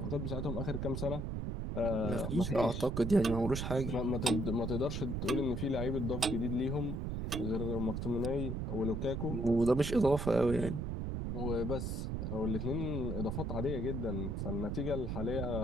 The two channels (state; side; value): noise; right; rumble, 2 dB below the sound